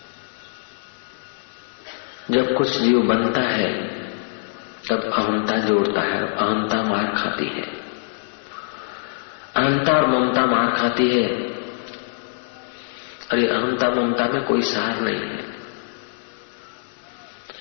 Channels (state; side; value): silent; right; 61 dB below the other